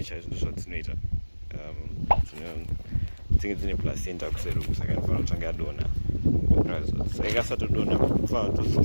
is not later. I think it's in a placenta kuseruku saka fana kutanga dona. So I guess to dona fana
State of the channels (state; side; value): inverted; both; correlation -1.00